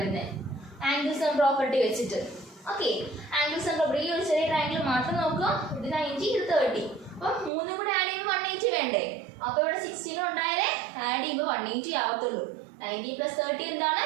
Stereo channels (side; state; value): left; drops out; at 7.5 s